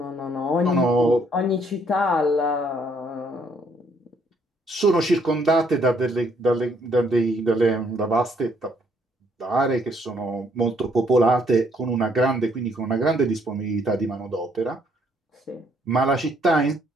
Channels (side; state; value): both; normal; correlation 0.67